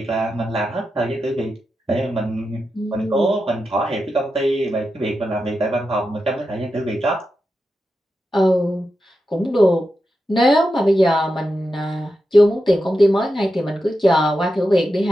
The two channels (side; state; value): both; normal; correlation 0.89